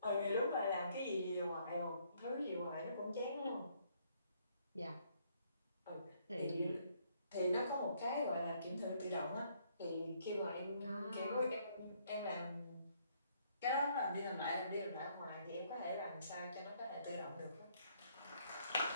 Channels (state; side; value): inverted; both; correlation -0.68